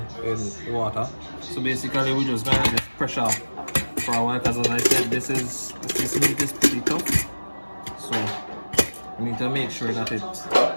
in the water. So basically we're just going to let it pressure for a while because as I said, this meat is pretty tough. So we need to make sure that it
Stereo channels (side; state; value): both; inverted; correlation -1.00